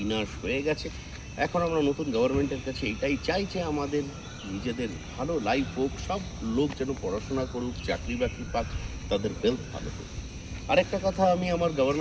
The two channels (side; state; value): both; identical; correlation 1.00